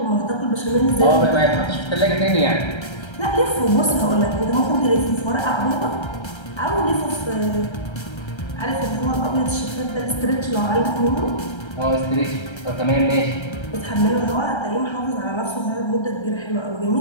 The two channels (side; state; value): right; late; 1.3 ms